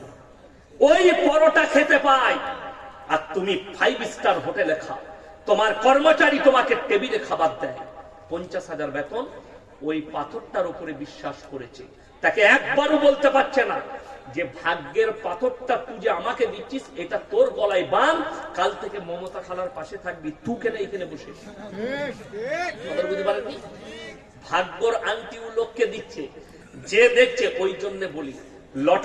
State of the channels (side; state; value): both; identical; correlation 1.00